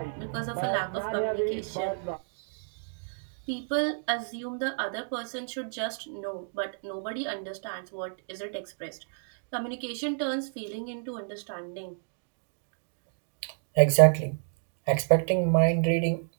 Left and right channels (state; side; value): silent; left; digital silence